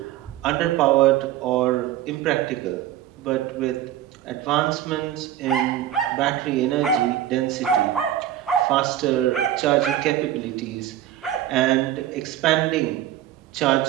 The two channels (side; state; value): left; quieter; 12.2 dB